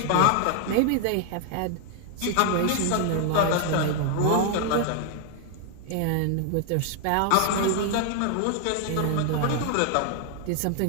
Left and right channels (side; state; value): both; different; correlation 0.00